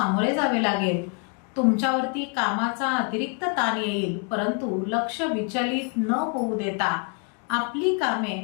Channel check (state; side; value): quieter; right; 36.2 dB